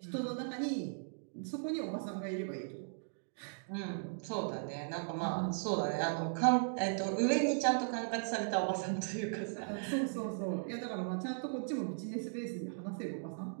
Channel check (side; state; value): left; silent; digital silence